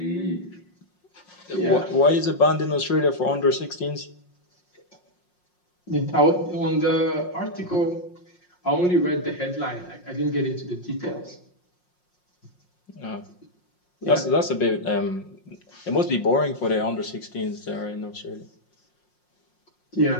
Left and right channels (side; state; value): right; late; 5.6 ms